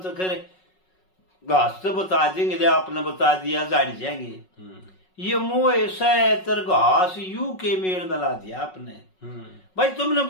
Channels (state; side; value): late; right; 5.4 ms